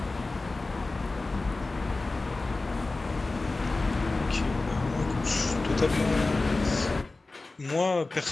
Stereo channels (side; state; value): right; quieter; 3.3 dB